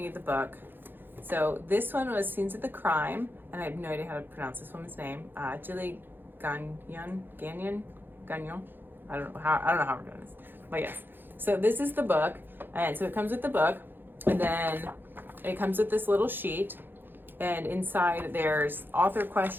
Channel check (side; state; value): left; late; 0.097 ms